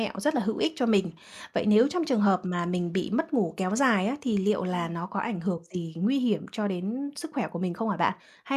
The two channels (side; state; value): both; identical; correlation 1.00